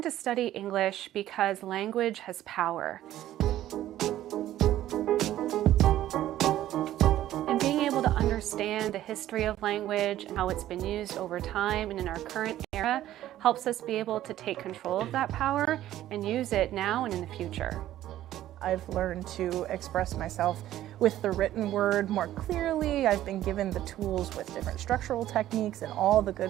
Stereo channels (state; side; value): quieter; left; 13.3 dB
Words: to study English because language has power. And being able to understand the history of language and how it's been used over time and in our current era helps us be able to take control of that power and use it now and in the future. I've learned to express myself with the written word more clearly. I've been given the tools with different structural techniques and all the